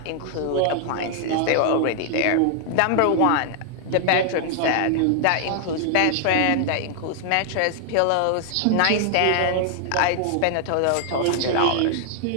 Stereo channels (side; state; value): both; different; correlation 0.00